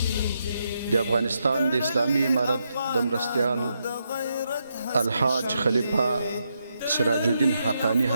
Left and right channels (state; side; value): inverted; both; correlation -0.82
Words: د افغانستان د اسلامي امارت د مرستیال الحاج خلیفه سراج الدین حقانی